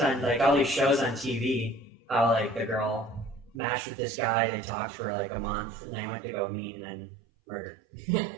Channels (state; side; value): drops out; left; at 3.6 s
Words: like all these shows on TV. How like the girl matched with this guy, they talked for like a month, and they went to go meet and then murdered.